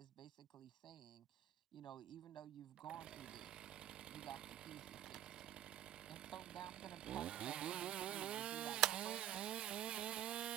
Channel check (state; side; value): quieter; left; 12.3 dB